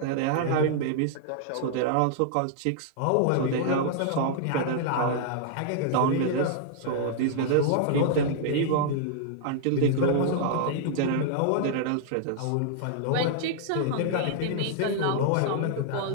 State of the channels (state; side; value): different; both; correlation -0.01